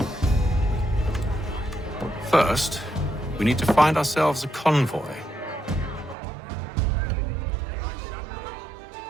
First, we need to find ourselves a convoy.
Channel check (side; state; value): left; drops out; at 6.2 s